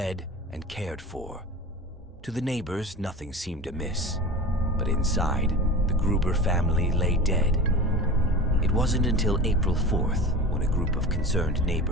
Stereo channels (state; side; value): normal; both; correlation 0.33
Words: and cared for. To the neighbors, nothing seemed amiss. But inside, the Gruber family lay dead. It wasn't until April 4th, when a group of concerned